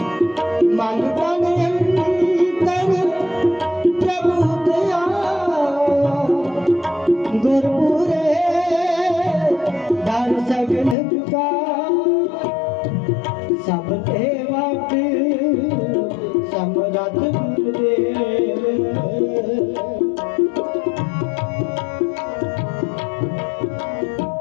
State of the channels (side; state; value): right; drops out; at 11.0 s